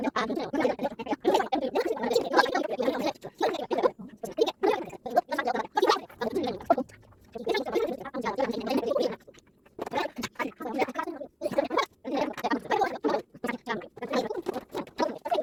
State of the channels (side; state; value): both; identical; correlation 1.00